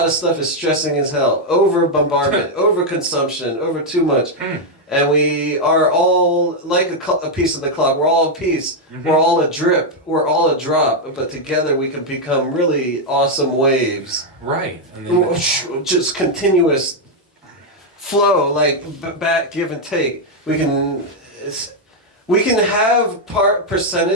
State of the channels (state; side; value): normal; both; correlation 0.01